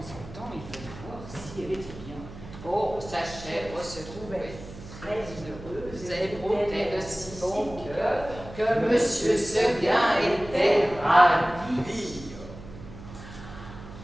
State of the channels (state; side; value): noise; right; hum, 15 dB below the sound